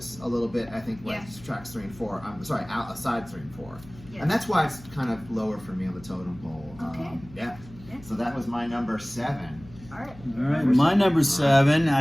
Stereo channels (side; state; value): left; noise; hum, 20 dB below the sound